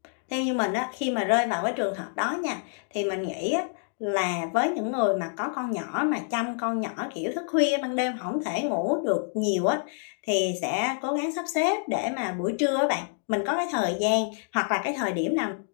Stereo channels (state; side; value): silent; right; 60 dB below the other